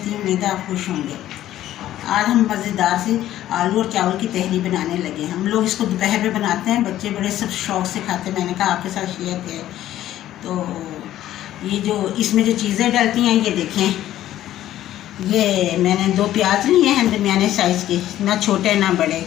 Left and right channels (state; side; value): quieter; right; 13.1 dB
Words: हूँ। उम्मीद है आप खुश होंगे। आज हम मज़ेदार से आलू और चावल की तहरी बनाने लगे। हम लोग इसको दोपहर में बनाते हैं, बच्चे बड़े सब शौक़ से खाते हैं। मैंने कहा आपके साथ शेयर किया। तो ये जो इसमें जो चीज़ें डलती हैं ये देखें, ये मैंने 2 प्याज लिए हैं दरमियाने साइज़ के, ना छोटे ना बड़े,